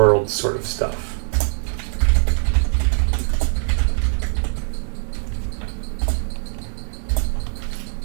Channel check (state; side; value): silent; left; digital silence